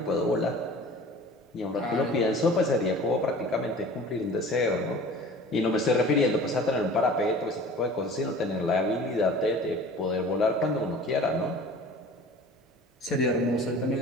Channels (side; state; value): both; normal; correlation 0.43